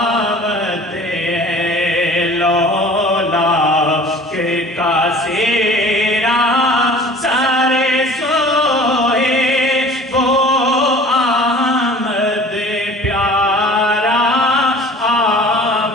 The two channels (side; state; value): both; normal; correlation 0.45